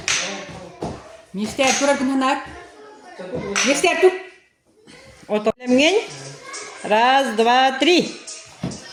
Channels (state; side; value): identical; both; correlation 1.00